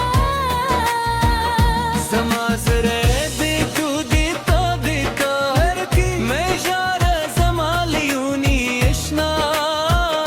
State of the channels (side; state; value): both; identical; correlation 1.00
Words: समाजरे दे तू देता देता हर की मैं जारा जमालियूनी इश्ना